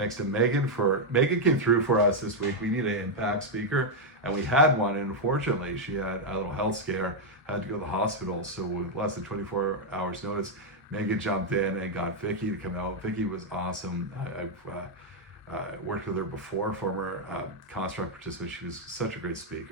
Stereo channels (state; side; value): normal; both; correlation -0.01